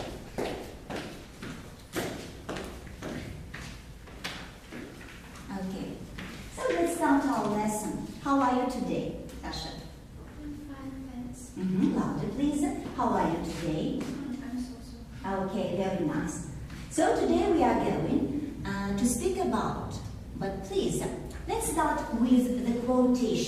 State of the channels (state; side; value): identical; both; correlation 1.00